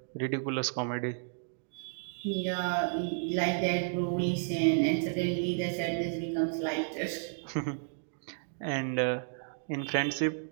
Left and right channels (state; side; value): silent; left; digital silence